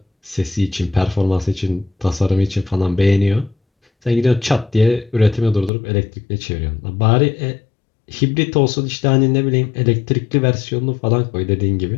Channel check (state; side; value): drops out; right; at 5.7 s